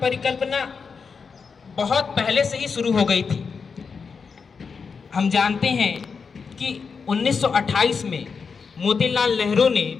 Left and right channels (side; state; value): right; quieter; 5.5 dB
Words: बहुत पहले से ही शुरू हो गई थी। हम जानते हैं कि 1928 में मोतीलाल नेहरू ने